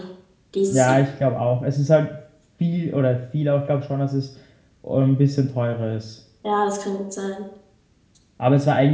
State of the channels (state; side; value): identical; both; correlation 1.00